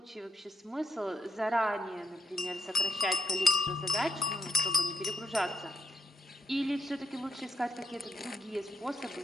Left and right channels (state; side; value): normal; both; correlation 0.80